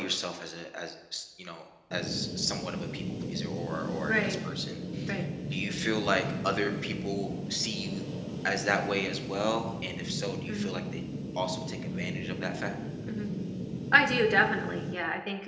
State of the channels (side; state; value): both; identical; correlation 1.00